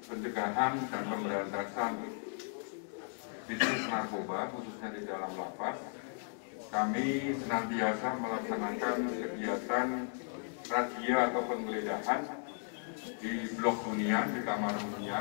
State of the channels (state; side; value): silent; right; 54 dB below the other